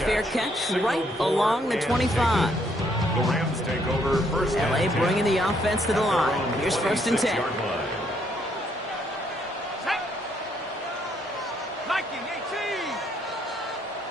catch right along the 25. The Rams take over first and LA 10. bringing the offense to the line. Here's 1st and 10.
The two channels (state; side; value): normal; both; correlation 0.70